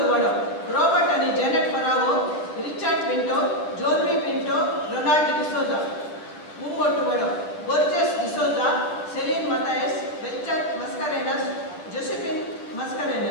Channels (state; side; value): late; right; 9.8 ms